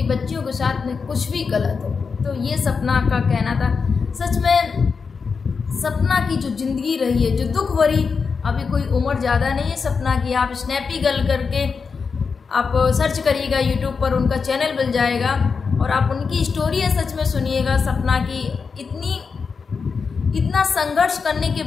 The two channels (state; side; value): quieter; right; 5.3 dB